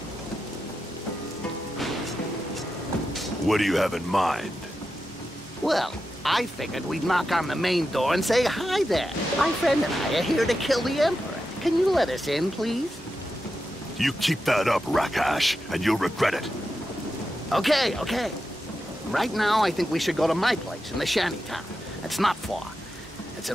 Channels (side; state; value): both; normal; correlation 0.89